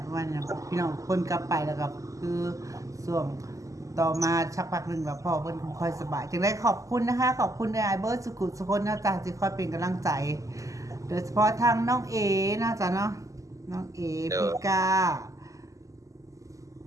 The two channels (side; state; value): left; late; 0.16 ms